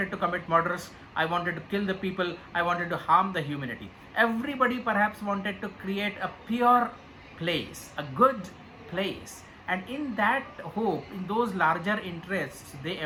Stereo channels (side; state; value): both; identical; correlation 1.00